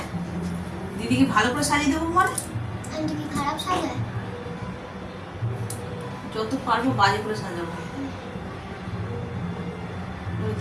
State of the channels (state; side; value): identical; both; correlation 1.00